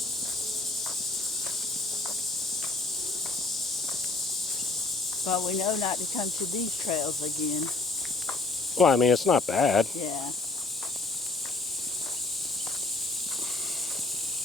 But we know not to come to these trails again. Well, I mean, it's not bad. Yeah.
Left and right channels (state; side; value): quieter; right; 3.4 dB